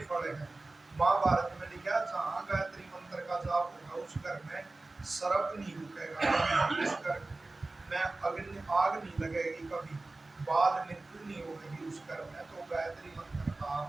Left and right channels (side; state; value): left; quieter; 3.2 dB